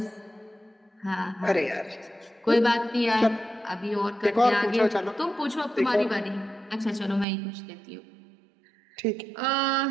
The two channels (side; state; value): left; drops out; at 7.2 s